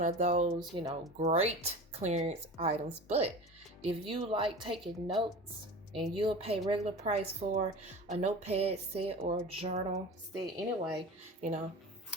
of those, great clearance items. But if you like taking notes and you'll pay regular price for a notepad set or journal set anyway,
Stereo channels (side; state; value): both; normal; correlation 0.34